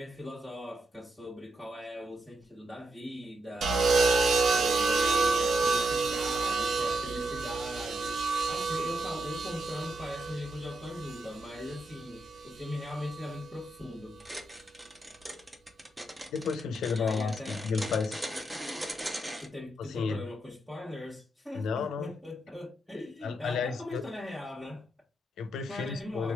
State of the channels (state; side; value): normal; both; correlation 0.82